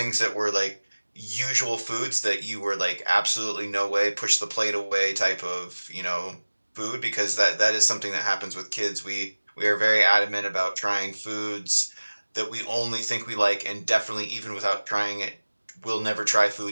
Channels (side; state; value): both; inverted; correlation -1.00